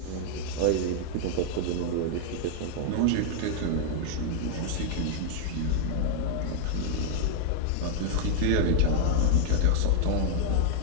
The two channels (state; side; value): different; both; correlation 0.00